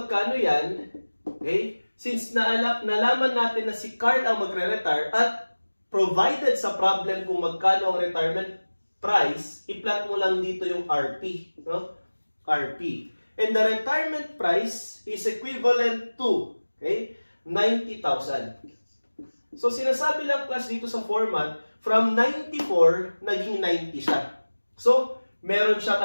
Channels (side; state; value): both; inverted; correlation -1.00